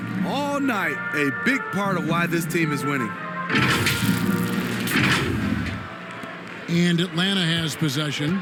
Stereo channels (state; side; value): identical; both; correlation 1.00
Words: all night. A big part of why this team is winning. And Atlanta has possession.